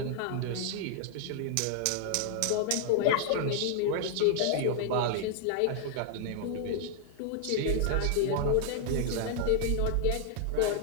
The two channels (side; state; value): both; different; correlation -0.01